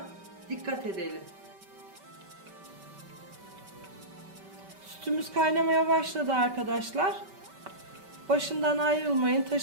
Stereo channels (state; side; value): late; left; 5.2 ms